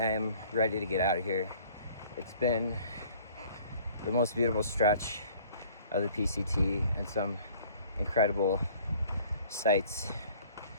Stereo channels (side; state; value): both; inverted; correlation -0.53